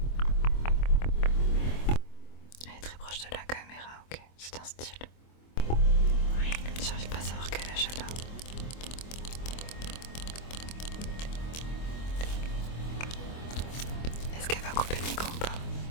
Elle est très proche de la caméra, ok, c'est un style. J'arrive pas à savoir quel âge elle a. Est-ce qu'elle va couper le micro ou pas?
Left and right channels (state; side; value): late; right; 25 ms